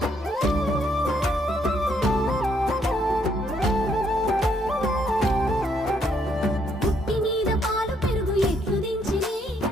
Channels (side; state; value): both; normal; correlation 0.71